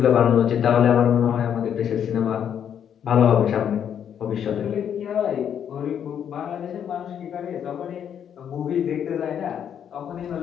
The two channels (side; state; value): right; quieter; 8.8 dB